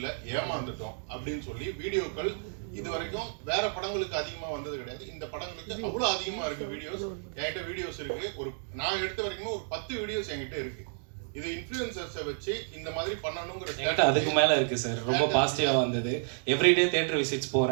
ஏமாந்துட்டோம் அப்படின்னு சொல்லி வீடியோக்கள் இது வரைக்கும் வேற படங்களுக்கு அதிகமா வந்தது கிடையாது. இந்த படங்களுக்கு அவ்வளவு அதிகமா இருக்கு வீடியோஸ். என்கிட்ட வீடியோஸ் இருக்கு. நான் எடுத்த வரைக்கும் ஒரு 10 வீடியோஸ் என்கிட்ட இருக்கு. இது இன்ஃப்ளூயன்சர்ஸை வச்சு இந்த மாதிரி பண்ணணுங்கிற அதுக்கு மேல இருக்கு சார். ரொம்ப பாசிட்டிவா வந்தது. எவ்ரிடே தியேட்டர் விசிட்ஸ்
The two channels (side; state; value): left; silent; digital silence